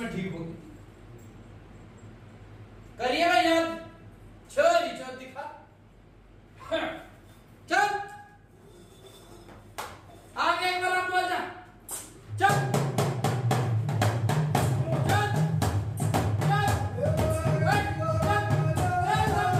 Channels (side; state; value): both; identical; correlation 1.00